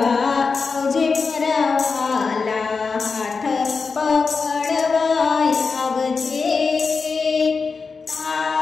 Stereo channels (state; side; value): quieter; right; 4.8 dB